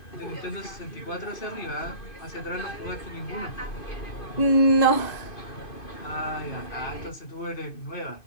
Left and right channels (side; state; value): right; late; 2.6 ms